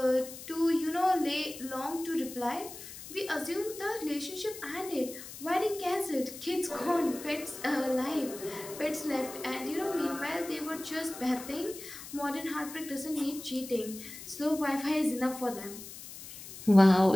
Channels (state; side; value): noise; left; hiss, 13 dB below the sound